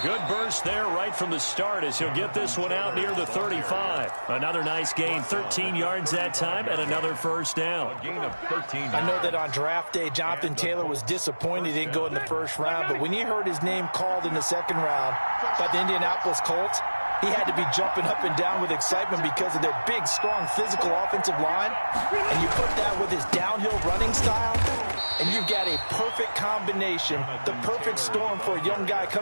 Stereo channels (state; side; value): inverted; both; correlation -1.00